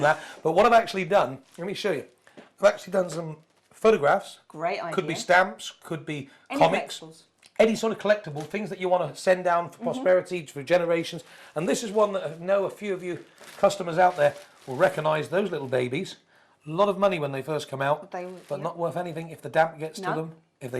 that. But what I've actually done, let me show you. I've actually done some photographs. Great idea. Could be stamps, could be Any comics. collectibles. Any sort of collectible, things that you want to send down for posterity, for generations. And this is one that I know a few of you customers out there will recognise those little babies. A lot of money when they first come out, They- but yeah. not worth anything if the damp gets to No. them, if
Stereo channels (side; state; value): both; identical; correlation 1.00